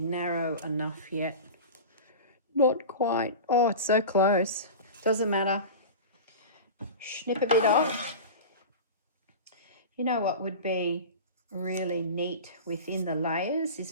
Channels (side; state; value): both; inverted; correlation -0.30